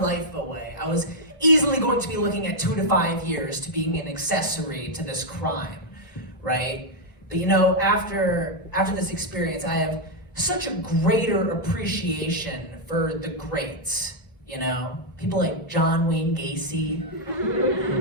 away. I was easily going to be looking at 2 to 5 years to being an accessory to this crime, right? But, you know, after this experience, I have such a greater appreciation for the greats, you know? People like John Wayne Gacy,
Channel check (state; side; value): normal; both; correlation -0.01